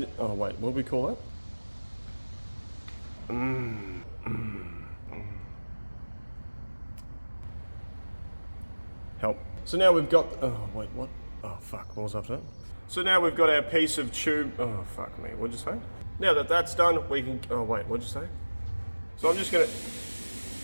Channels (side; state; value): both; inverted; correlation -1.00